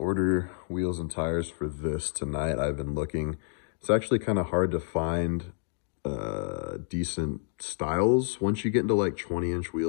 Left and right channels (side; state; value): right; silent; digital silence